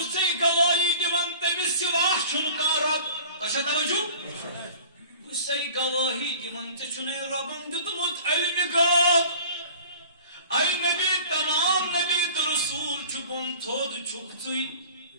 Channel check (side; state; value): both; inverted; correlation -0.44